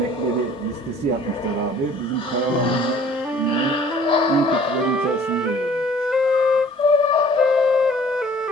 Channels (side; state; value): both; normal; correlation 0.52